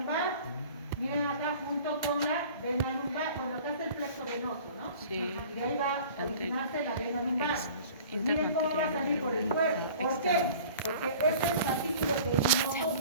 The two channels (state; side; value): inverted; both; correlation -0.45